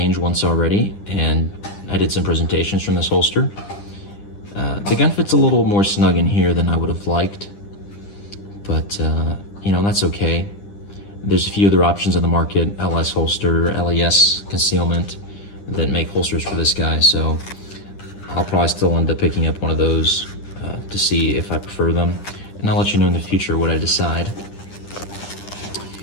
once already, and I did some presentations from this holster. The gun fits a little more snug in here than I would have liked, but you know, that's okay. There's a few other options on the market, LS holster, LES concealment, that make holsters for this guy, so I'll probably still end up picking up one of those to see if I prefer them, and I'll let you know in the future what I decide.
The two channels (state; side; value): late; right; 10 ms